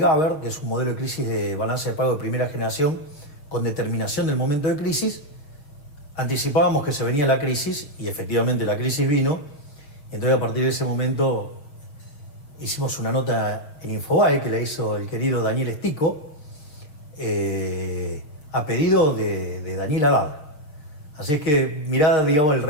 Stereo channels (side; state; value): right; late; 6.5 ms